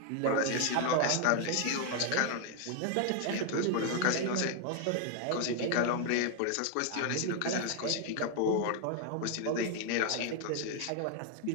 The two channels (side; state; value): both; different; correlation 0.01